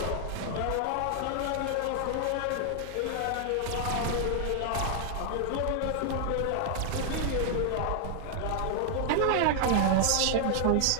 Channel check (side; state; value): both; different; correlation 0.00